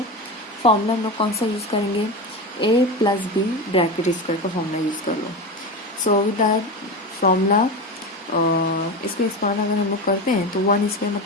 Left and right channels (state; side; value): normal; both; correlation 0.22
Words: फॉर्मूला हम लोग कौन सा यूज़ करेंगे? A plus B bracket square का फॉर्मूला यूज़ कर लो. सो विद दैट फॉर्मूला इसको एक्सपांड अगर हम लोग करते हैं तो 1 स्क्वायर